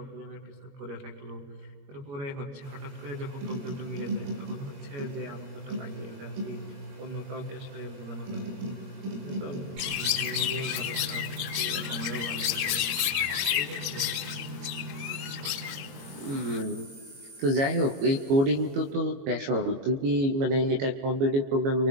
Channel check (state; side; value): late; left; 21 ms